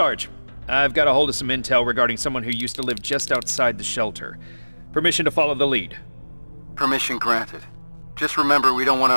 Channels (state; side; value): inverted; both; correlation -1.00